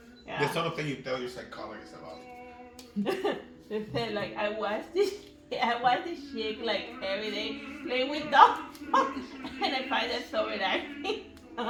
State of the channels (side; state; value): both; identical; correlation 1.00